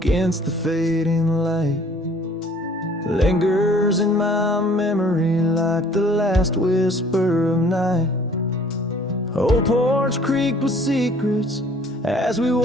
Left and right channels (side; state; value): both; normal; correlation 0.55